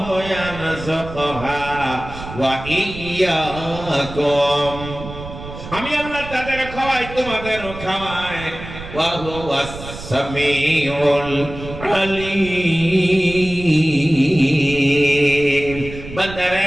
ইয়ারযুকুহা ওয়া ইয়্যাকুম, আমি আল্লাহ তাদের খাওয়াই, তোমাদেরও খাওয়াই। ওয়া হুয়াস সামিউল আলীম।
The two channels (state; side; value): noise; right; rumble, 12 dB below the sound